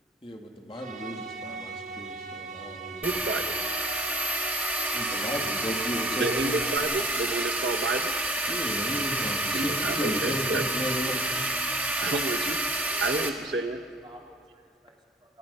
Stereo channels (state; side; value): normal; both; correlation 0.52